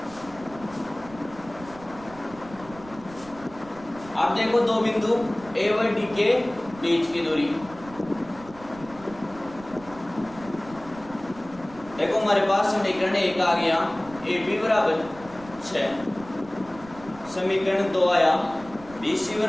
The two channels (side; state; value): right; noise; rumble, 19 dB below the sound